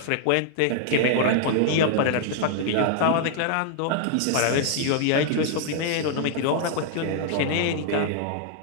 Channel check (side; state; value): both; different; correlation 0.00